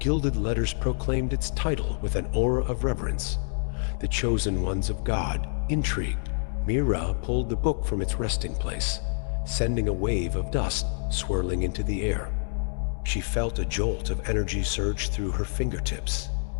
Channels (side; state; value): right; silent; digital silence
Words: letters proclaimed its title with an aura of reverence. The Chosen Ones of God. Intrigued, Mira pulled the book from its resting place, sending a wave of dust swirling into the air. She felt a jolt of energy surge through her fingertips,